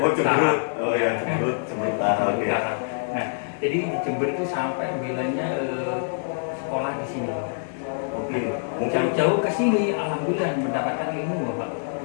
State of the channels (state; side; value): silent; right; 56 dB below the other